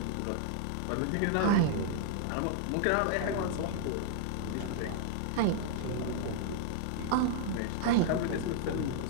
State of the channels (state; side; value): different; both; correlation -0.01